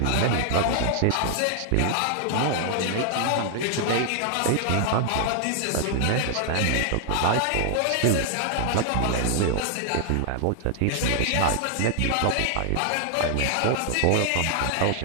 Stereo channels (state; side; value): different; both; correlation 0.00